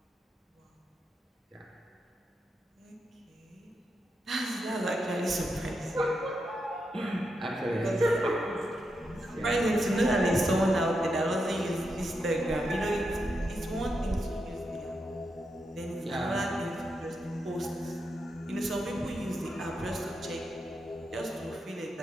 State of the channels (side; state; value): both; normal; correlation 0.85